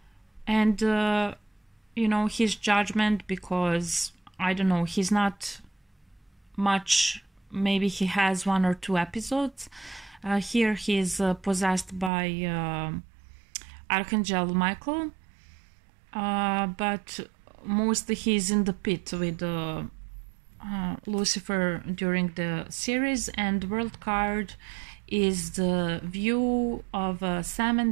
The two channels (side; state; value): left; drops out; at 12.1 s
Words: and you know, his judgment, because I don't know, he's not much. Maybe he has 1 or 2 episodes. Here he is possessed by Archangel Michael, but mostly he's in the pit with Lucifer during the series. And the world card is the view of Sam